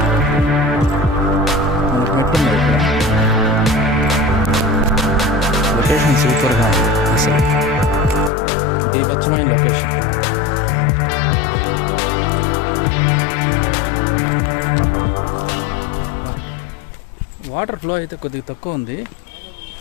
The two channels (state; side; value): drops out; right; at 8.3 s